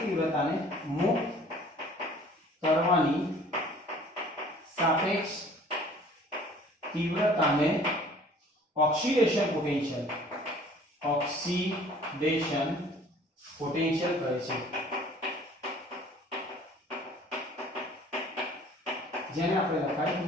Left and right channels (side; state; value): both; normal; correlation 0.52